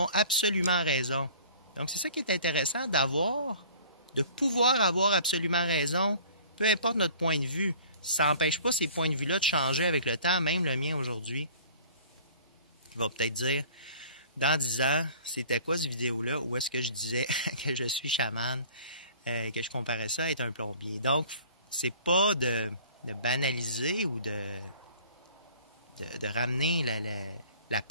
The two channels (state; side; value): inverted; both; correlation -0.48